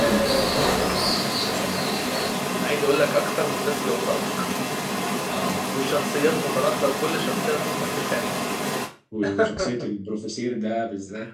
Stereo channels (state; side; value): identical; both; correlation 1.00